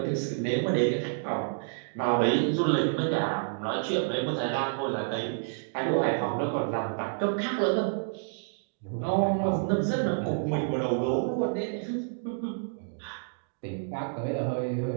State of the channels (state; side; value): silent; left; digital silence